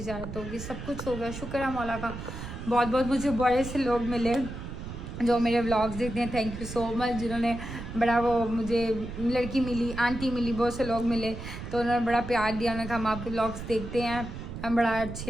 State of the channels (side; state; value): right; noise; rumble, 9 dB below the sound